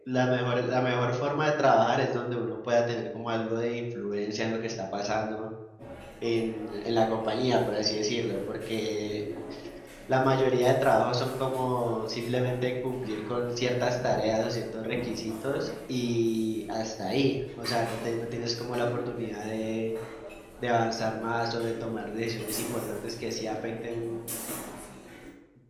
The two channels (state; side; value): identical; both; correlation 1.00